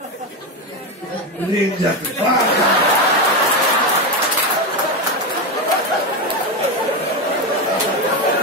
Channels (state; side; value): normal; both; correlation 0.13